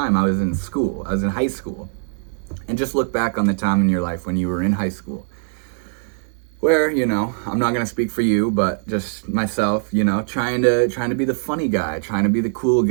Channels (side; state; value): left; silent; digital silence